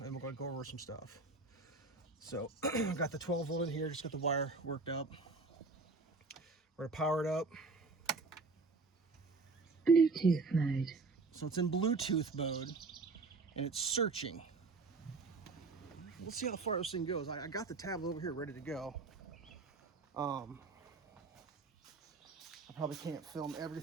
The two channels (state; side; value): quieter; left; 3.9 dB